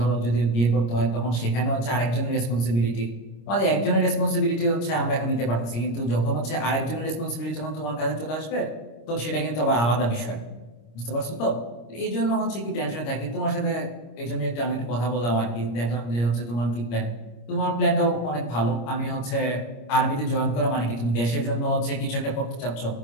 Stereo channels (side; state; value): right; late; 25 ms